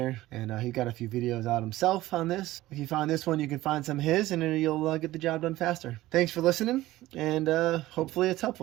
and he got a few videos out himself on this. If you find this one, you can find some of his, and then you'll get the job done faster. Thanks for listening, and hopefully it's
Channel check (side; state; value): left; quieter; 16.6 dB